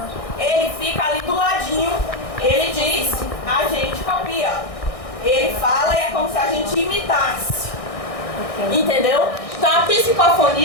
Ele fica ali do ladinho, ele diz, a gente copia. Ele fala e é como se a gente imitasse. Entendeu? Então a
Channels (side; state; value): right; late; 1.6 ms